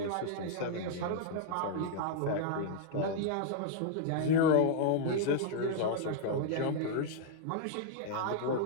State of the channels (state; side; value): different; both; correlation -0.01